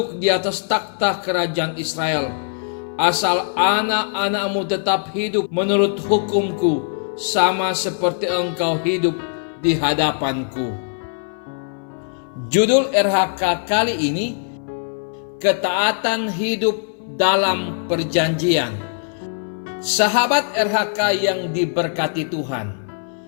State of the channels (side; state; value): right; silent; 60 dB below the other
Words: di atas takhta kerajaan Israel, asal anak-anakmu tetap hidup menurut hukumku, sama seperti engkau hidup di hadapanku. Judul RHK kali ini, ketaatan hidup dalam perjanjian. Sahabat RHK yang diberkati Tuhan,